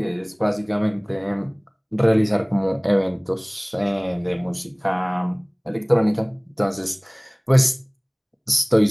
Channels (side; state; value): both; identical; correlation 1.00